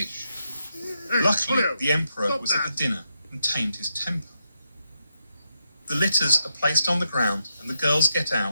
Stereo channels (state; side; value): inverted; both; correlation -0.82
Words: Luckily, the emperor was at the dinner and tamed his temper. The litters are placed on the ground and the girls get